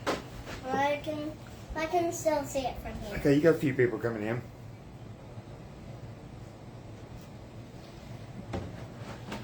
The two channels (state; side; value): identical; both; correlation 1.00